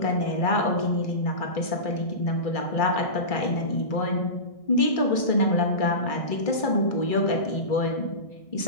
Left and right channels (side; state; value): right; late; 2.3 ms